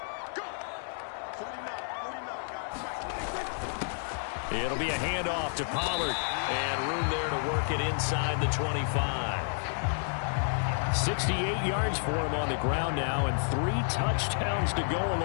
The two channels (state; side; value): silent; right; digital silence